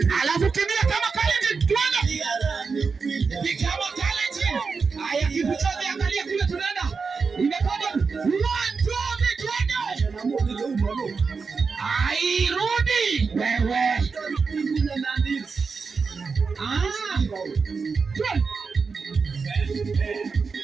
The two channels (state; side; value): quieter; left; 5.0 dB